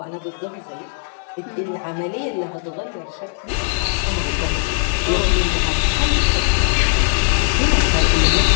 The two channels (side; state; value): right; silent; digital silence